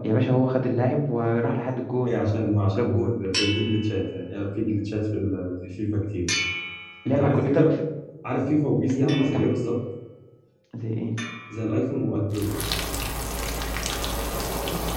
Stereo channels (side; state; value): both; identical; correlation 1.00